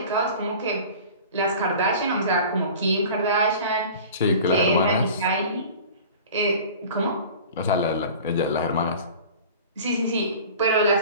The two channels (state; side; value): inverted; both; correlation -0.40